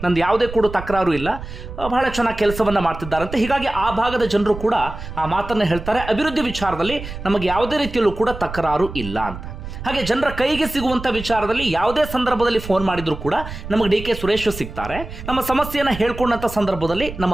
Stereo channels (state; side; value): noise; right; rumble, 11 dB below the sound